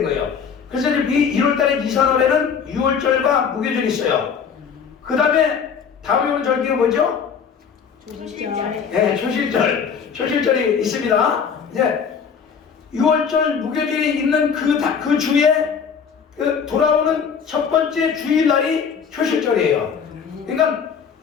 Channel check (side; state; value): right; quieter; 6.7 dB